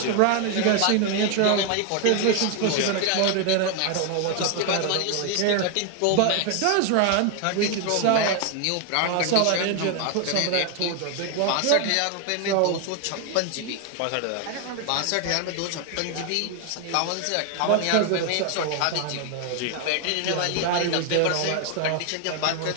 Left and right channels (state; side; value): different; both; correlation 0.01